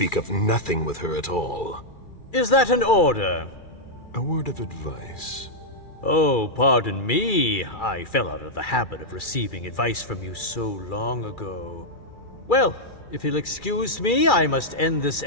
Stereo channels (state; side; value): late; right; 2.3 ms